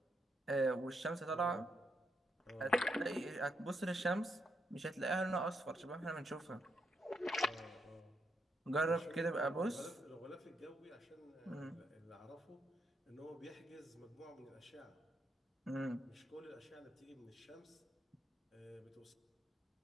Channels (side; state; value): both; normal; correlation 0.79